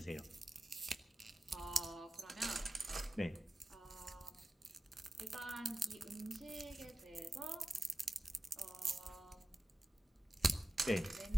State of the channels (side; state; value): both; normal; correlation 0.95